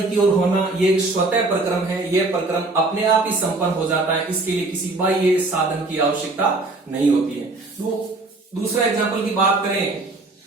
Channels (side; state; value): left; quieter; 3.2 dB